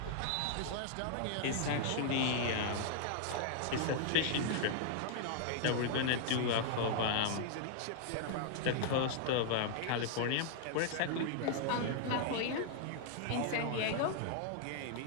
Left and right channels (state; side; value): different; both; correlation -0.01